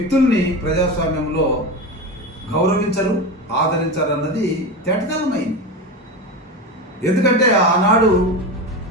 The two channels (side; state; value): both; normal; correlation 0.23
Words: ప్రజాస్వామ్యంలో గౌరవించరు, ఆదరించరు అన్నది తేటతెల్లమైంది. ఎందుకంటే ఆనాడు